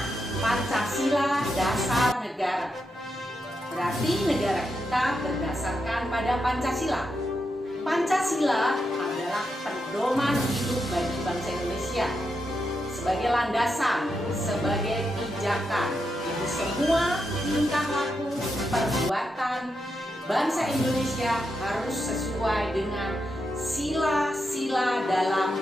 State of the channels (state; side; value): normal; both; correlation 0.85